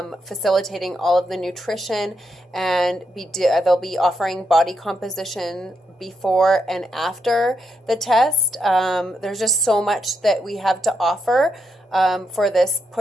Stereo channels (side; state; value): both; normal; correlation 0.80